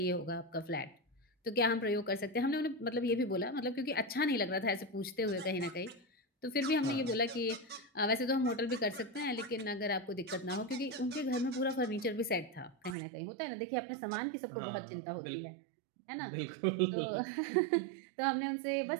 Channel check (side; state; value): left; drops out; at 13.0 s